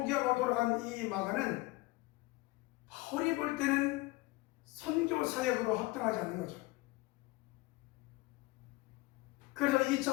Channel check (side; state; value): right; quieter; 22.1 dB